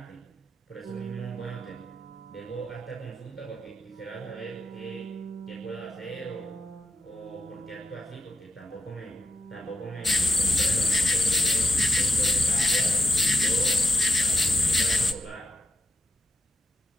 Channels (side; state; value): both; normal; correlation 0.85